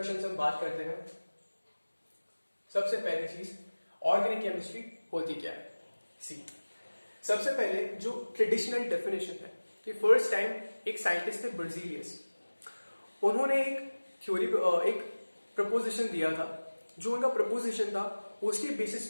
से हम बात करते हैं। सबसे पहली चीज ऑर्गेनिक केमिस्ट्री होती क्या है। सी सबसे पहले जो ट्रेडिशनल डेफिनेशन है कि फर्स्ट टाइम एक साइंटिस्ट थे बर्जीलियस, उन्होंने एक थ्योरी एक प्रपोजिशन दिया था। जो उनका प्रपोजिशन था उसके बेसिस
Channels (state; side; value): inverted; both; correlation -1.00